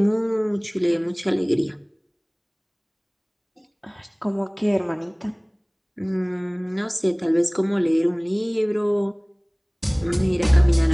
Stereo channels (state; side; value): identical; both; correlation 1.00